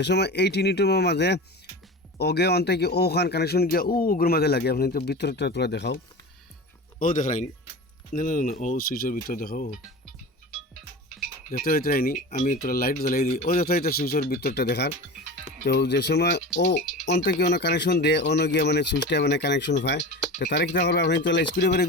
সময় এই টিনিটুমের মাঝে ওগে অন্তে কি ওখান কানেকশন গিয়া ওগুলোর মাঝে লাগে, আপনি তো ভিতরটা তোরা দেখাও, ও দেখায়নি না না না, ও সুইচের ভিতর দেখাও দেখতে হইতে রাইনি, আমি তোরা লাইট জ্বালাই দিই, ও যত হইতে সুইচের ভিতরটা দেখার। তো যে সময় ও অন্তে কি অন্য কানেকশন দেয় অন্য গিয়া মানে সুইচটা মানে কানেকশন পায়, তো তারা কিনা করবে আপনি তো স্ক্রুড্রাইভার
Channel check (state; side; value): normal; both; correlation 0.31